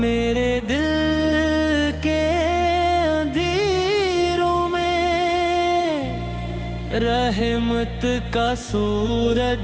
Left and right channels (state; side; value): identical; both; correlation 1.00